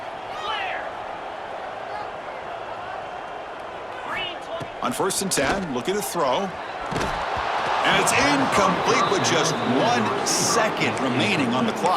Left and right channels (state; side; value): identical; both; correlation 1.00